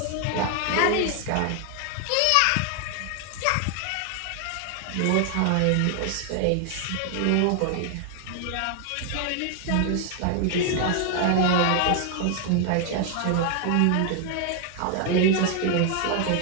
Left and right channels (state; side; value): different; both; correlation 0.00